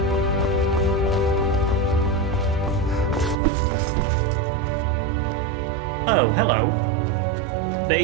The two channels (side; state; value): left; drops out; at 3.4 s